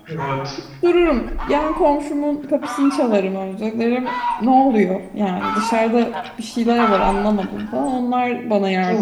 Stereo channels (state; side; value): identical; both; correlation 1.00